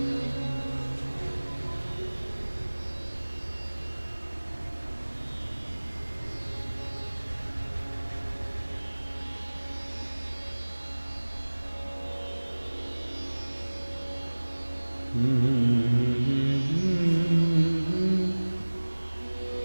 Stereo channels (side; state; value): both; inverted; correlation -1.00